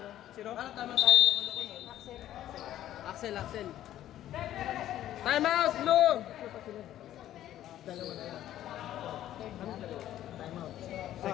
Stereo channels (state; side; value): quieter; right; 12.5 dB